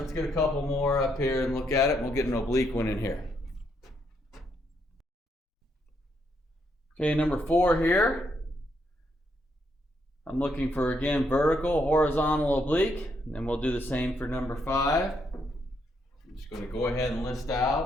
get a couple more up here and look at it, and we'll get an oblique one in here. Okay, number 4 here. I'm looking for, again, vertical, horizontal, oblique, and then we'll do the same for number 5. I'm just going to go ahead and list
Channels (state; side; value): normal; both; correlation 0.76